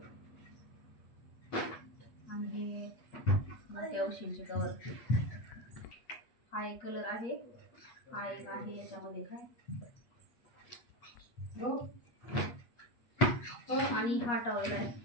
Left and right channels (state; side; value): late; right; 8.4 ms